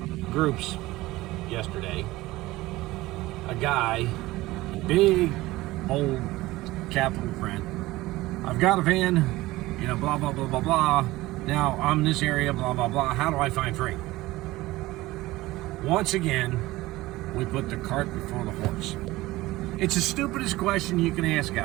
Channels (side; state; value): left; quieter; 18.5 dB